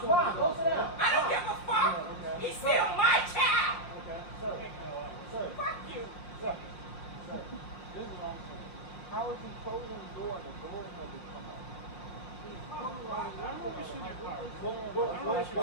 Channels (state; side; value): late; right; 5.6 ms